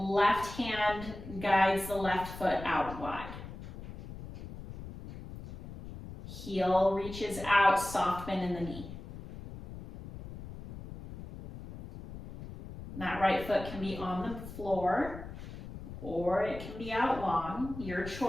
hand guides the left foot out wide. Heel reaches out, soft bend in the knee. And that right foot can be on the floor or it can be out long, your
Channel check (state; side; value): noise; left; rumble, 12 dB below the sound